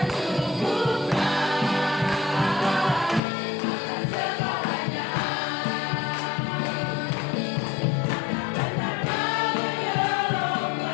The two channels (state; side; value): drops out; right; at 3.2 s